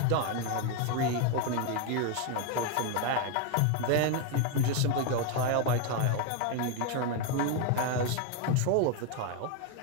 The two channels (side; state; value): both; different; correlation 0.01